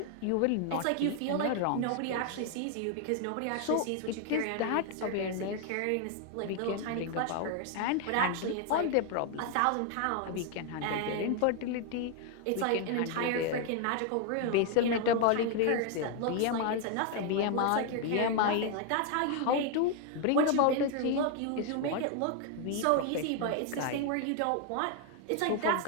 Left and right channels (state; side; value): different; both; correlation 0.00